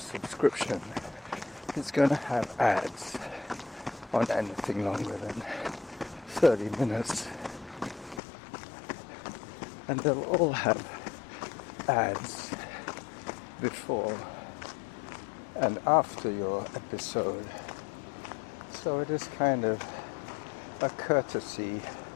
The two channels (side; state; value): right; drops out; at 8.2 s